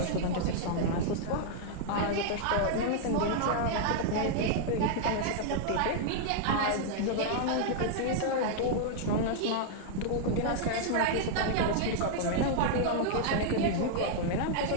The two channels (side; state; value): both; different; correlation -0.01